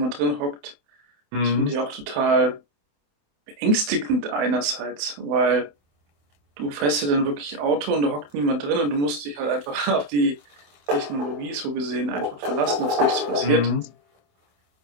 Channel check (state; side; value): late; left; 28 ms